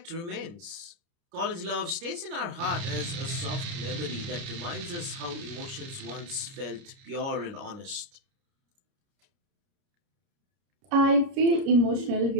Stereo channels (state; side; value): late; left; 30 ms